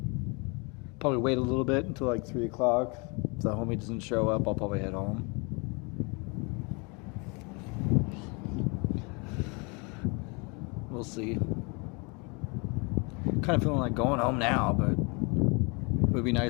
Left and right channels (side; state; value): right; quieter; 31.1 dB